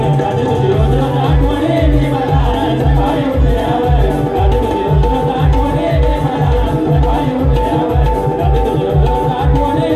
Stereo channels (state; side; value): identical; both; correlation 1.00